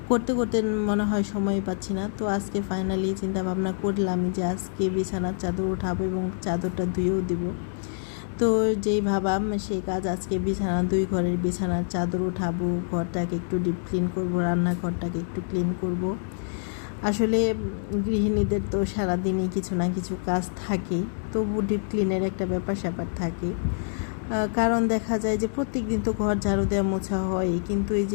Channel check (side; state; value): right; silent; digital silence